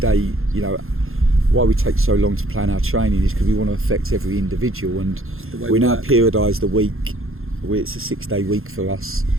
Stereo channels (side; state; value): left; late; 0.61 ms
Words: why we take so long to plan our training is because we want to affect every individual. And we now periodise the week. It's a 6-day week for us.